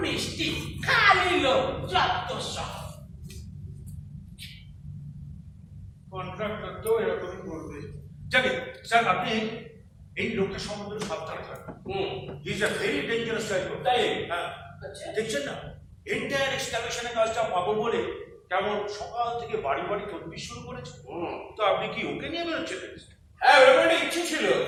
মিষ্টি, খালি লোক, যত সব। কন্ট্রাক্টর তো এরকমই করবে। জানি স্যার, আপনি এই লোকটার সম্বন্ধে সাবধানে থাকবেন। He is a very dangerous type. তাই? হ্যাঁ, দেখছেন না, এন্টায়ার এক্সকাভেশনের কাজটা পাবো বলে কেমন সকাল থেকে বাড়ি বাড়ি তদবির শুরু করেছে। তো আপনি কি ওকে নিয়ে বেরোচ্ছিলেন? হ্যাঁ, ওরকম একটা ইচ্ছে ছিল,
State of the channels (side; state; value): both; identical; correlation 1.00